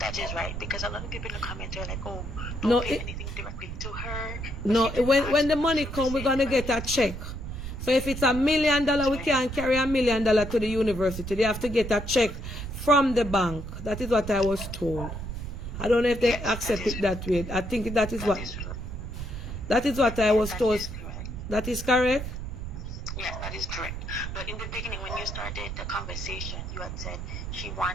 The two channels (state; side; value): noise; right; rumble, 7 dB below the sound